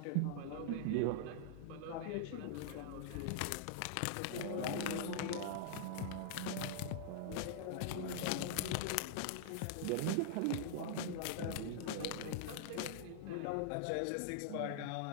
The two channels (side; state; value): both; different; correlation -0.01